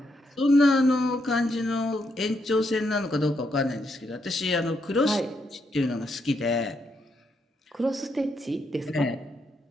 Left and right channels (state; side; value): normal; both; correlation 0.79